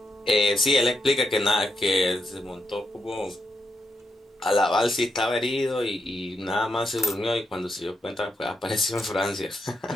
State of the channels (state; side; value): normal; both; correlation 0.83